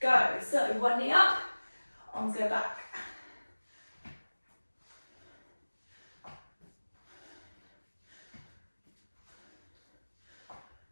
So one knee up, arms go back.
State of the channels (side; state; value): both; inverted; correlation -1.00